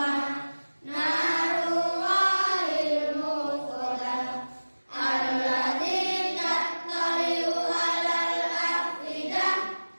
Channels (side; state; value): both; inverted; correlation -1.00